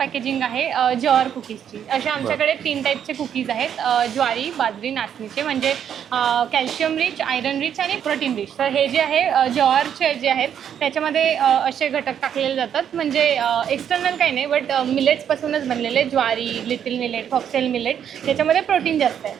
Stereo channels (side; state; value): left; quieter; 8.9 dB